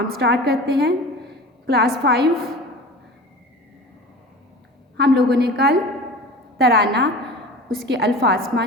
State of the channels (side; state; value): both; normal; correlation 0.37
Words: स्टार्ट करते हैं। क्लास 5 हम लोगों ने कल तराना, उसके अल्फाज